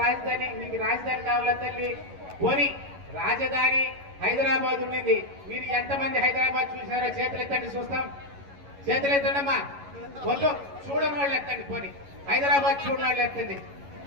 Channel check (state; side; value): late; left; 11 ms